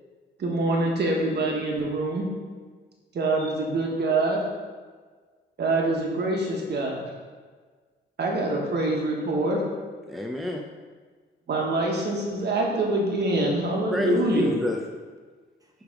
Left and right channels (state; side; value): normal; both; correlation 0.46